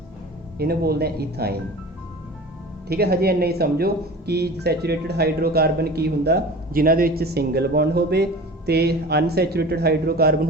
इन्हें बोलते हैं इथाइन। ठीक है, हजे इन्ना ही समझो कि सैचुरेटेड हाइड्रोकार्बन की हुंदा जिन्हां दे विच सिंगल बॉन्ड होवे, ते अनसैचुरेटेड हाइड्रोकार्बन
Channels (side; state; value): both; normal; correlation 0.38